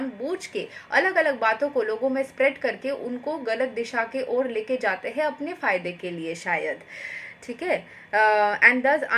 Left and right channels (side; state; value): both; identical; correlation 1.00